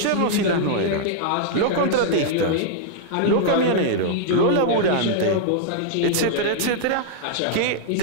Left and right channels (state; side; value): different; both; correlation -0.01